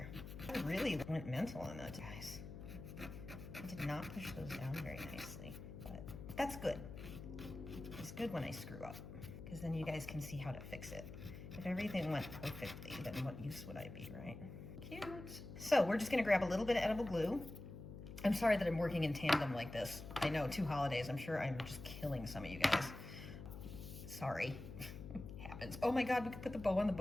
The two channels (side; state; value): left; noise; hum, 10 dB below the sound